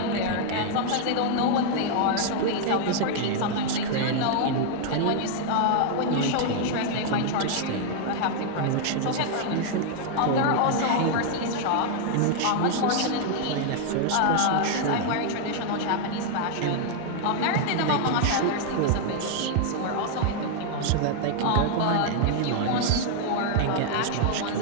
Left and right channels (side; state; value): both; different; correlation 0.00